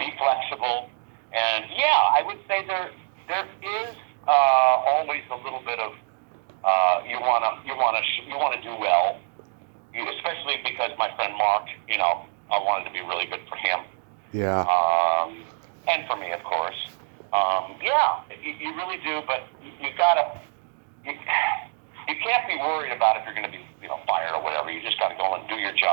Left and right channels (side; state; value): left; silent; 61 dB below the other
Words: flexible, and I would say there is always a little bit of you wanna do well, especially because my friend Mark, I wanted to be really good for him. Yeah. And for me, of course. You really do, but you can't be worried about if you're going to be, fired or whatever. You just got to go and do your